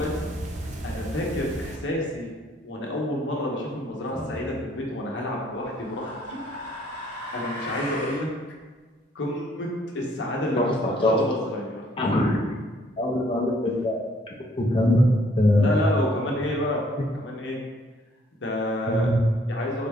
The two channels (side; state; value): both; normal; correlation 0.63